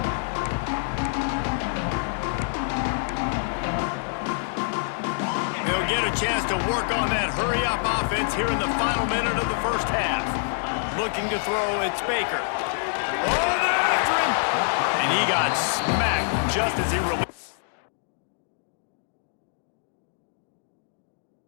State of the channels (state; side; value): silent; right; digital silence